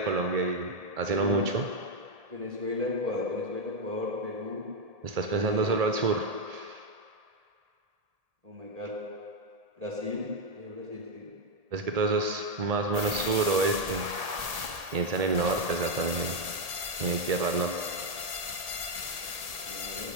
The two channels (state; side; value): late; left; 1.8 ms